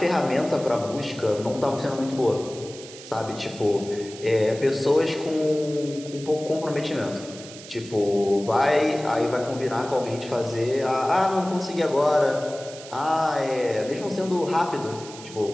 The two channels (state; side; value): noise; right; hiss, 16 dB below the sound